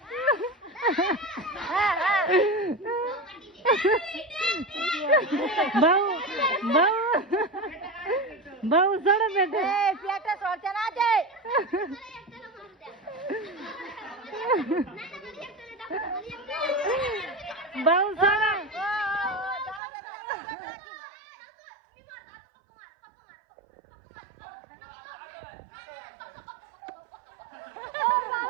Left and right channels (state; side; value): drops out; left; at 19.8 s